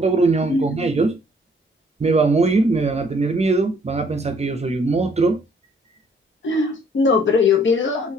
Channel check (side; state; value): both; normal; correlation 0.62